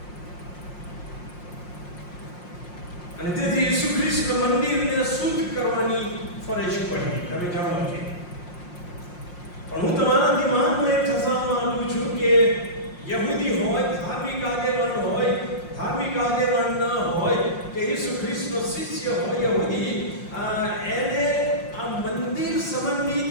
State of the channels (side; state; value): right; late; 5.6 ms